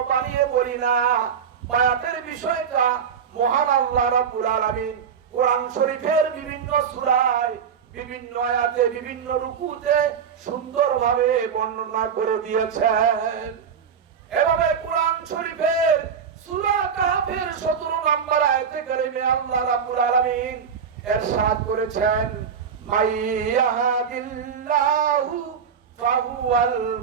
বানিয়ে বলি না। বায়াতের বিষয়টা মহান আল্লাহ রাব্বুল আলামিন কোরআন শরীফের বিভিন্ন সূরায়, বিভিন্ন আয়াতে, বিভিন্ন রুকুতে সুন্দরভাবে বর্ণনা করে দিয়েছেন। এভাবে কোরআন শরীফের সূরা কাহফের 17 নম্বর আয়াতে কারিমে আল্লাহ রাব্বুল আলামিন ইরশাদ করেছেন, মাইয়াহাদিল্লাহু ফাহুয়াল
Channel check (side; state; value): left; quieter; 7.0 dB